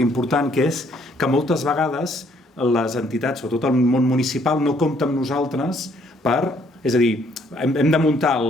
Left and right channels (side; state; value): both; normal; correlation 0.66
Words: que és que moltes vegades les entitats, sobretot el món municipal, no compta amb nosaltres és a dir, hem de muntar